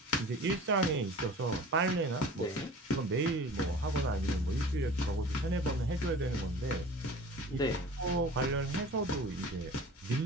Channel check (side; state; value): both; normal; correlation 0.41